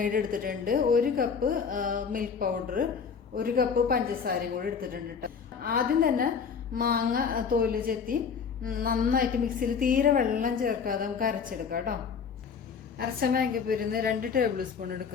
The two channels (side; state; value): right; quieter; 6.2 dB